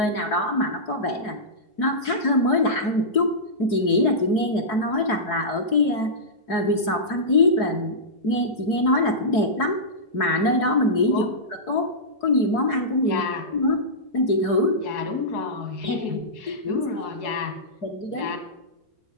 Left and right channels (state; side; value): late; right; 4.7 ms